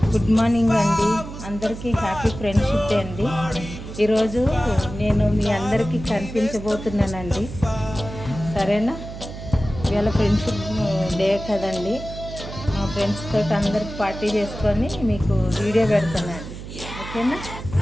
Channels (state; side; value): noise; right; hum, 11 dB below the sound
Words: Good morning అండి, అందరికీ happy friendship day అండి. ఈరోజు నేను మీ అందరికీ కనిపించబోతున్నానండి, సరేనా? ఇవాళ ఫ్రెండ్షిప్ డే కదండి, మా ఫ్రెండ్స్ తోటి అందరికి పార్టీ చేసుకొని మీకు వీడియో పెడతానండి, ఓకేనా?